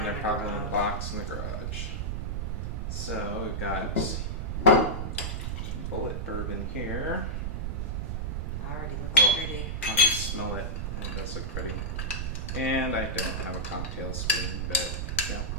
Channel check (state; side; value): noise; right; rumble, 2 dB below the sound